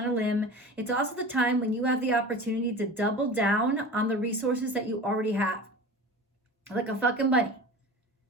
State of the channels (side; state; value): both; normal; correlation 0.34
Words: a limb. It's also the time when you have the opportunity to double down on the resources that you already have. like a fucking bunny.